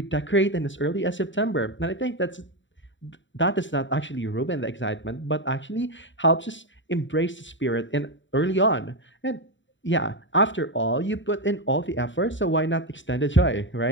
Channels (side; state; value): right; late; 0.54 ms